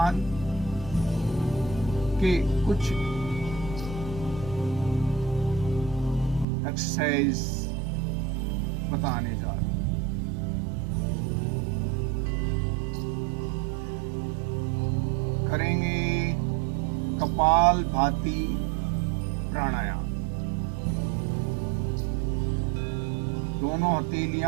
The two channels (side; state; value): left; drops out; at 6.5 s